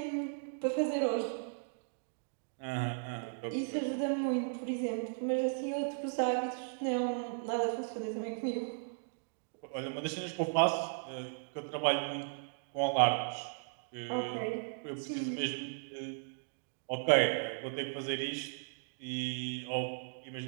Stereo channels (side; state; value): left; silent; digital silence